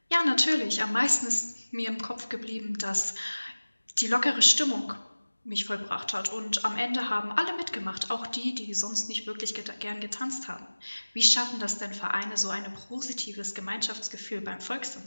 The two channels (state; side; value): inverted; both; correlation -1.00